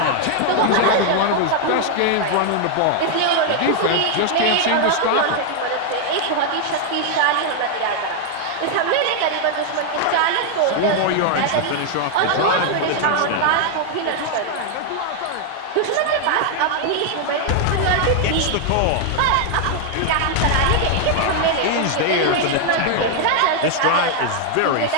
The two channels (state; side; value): different; both; correlation 0.00